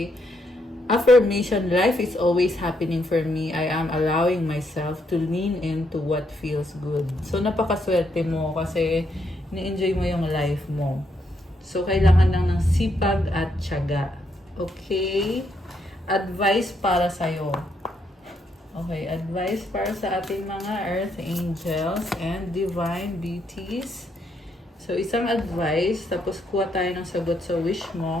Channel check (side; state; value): both; normal; correlation 0.76